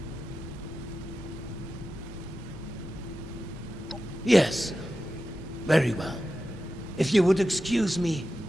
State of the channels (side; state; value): both; normal; correlation 0.92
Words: Yes. Very well. If you would excuse me,